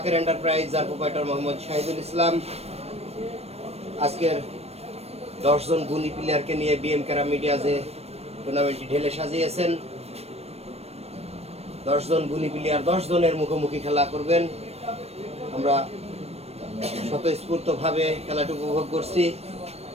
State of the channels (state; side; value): late; left; 0.30 ms